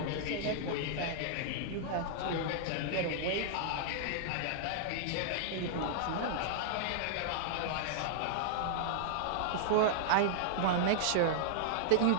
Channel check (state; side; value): different; both; correlation -0.01